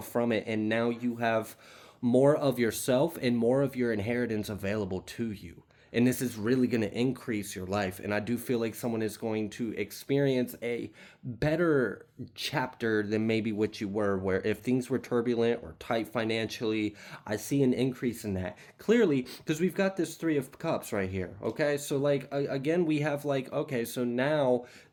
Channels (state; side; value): identical; both; correlation 1.00